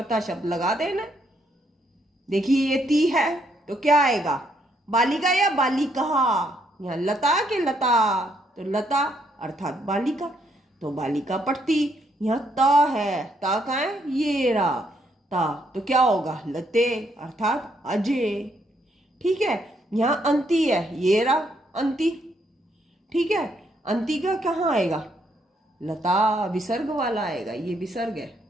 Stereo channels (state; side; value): normal; both; correlation 0.73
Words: शब्द लगा देना। देखिए ये ती है तो क्या आएगा, बालिका या बालिका। यहाँ लता के लता, तो लता अर्थात बालिका, तो बालिका पढ़ती। यहाँ ता है, ता का है ये रहा ता, तो क्या होगा, लते अर्थात अजय। ठीक है, यहाँ अंती है, ये रहा अंती। ठीक है, अंती का कहाँ आएगा, लता विसर्ग वाला आएगा, ये विसर्ग है।